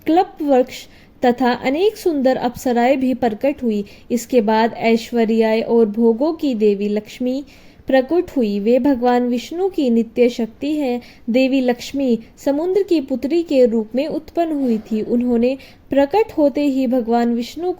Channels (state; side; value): identical; both; correlation 1.00